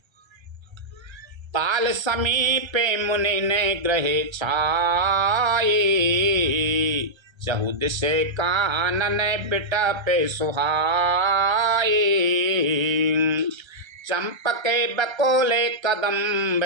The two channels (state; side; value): late; left; 1.3 ms